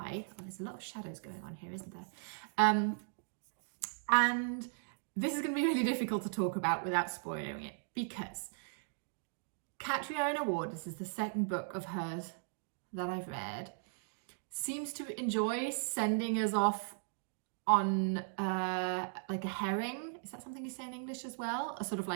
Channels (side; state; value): left; silent; digital silence